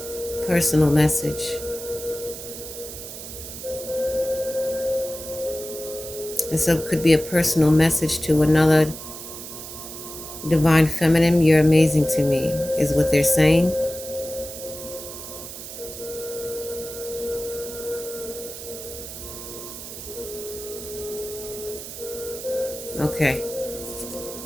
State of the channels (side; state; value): right; noise; hiss, 11 dB below the sound